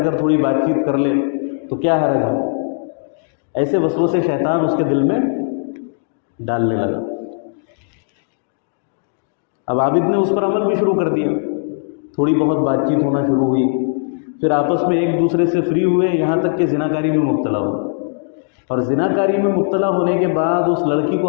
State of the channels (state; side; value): silent; right; digital silence